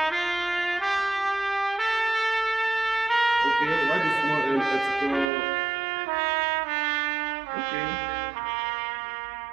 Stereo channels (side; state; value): left; drops out; at 5.2 s